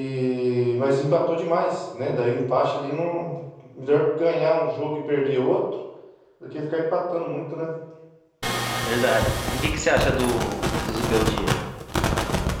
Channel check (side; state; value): both; identical; correlation 1.00